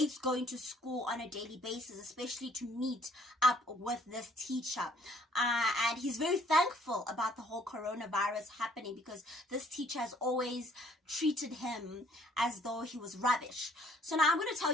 going to school on a daily basis, especially to meet up with this teacher. And he's very thankful about the whole coronavirus happening because this teacher has always treated him as though he was rubbish. So now I'm going to tell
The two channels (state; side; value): normal; both; correlation 0.60